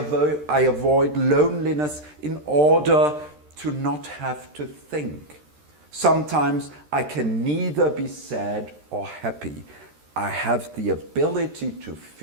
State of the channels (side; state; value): left; late; 13 ms